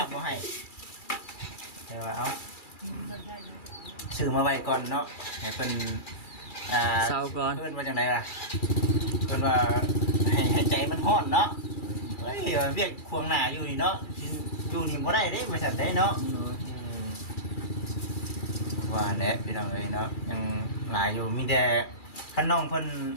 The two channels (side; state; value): right; late; 2.3 ms